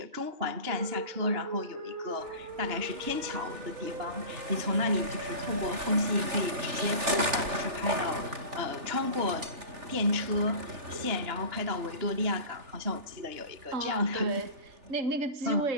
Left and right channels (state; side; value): late; left; 3.4 ms